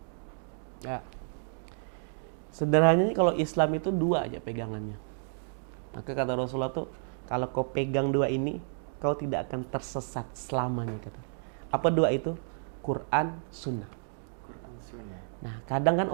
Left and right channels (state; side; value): silent; left; digital silence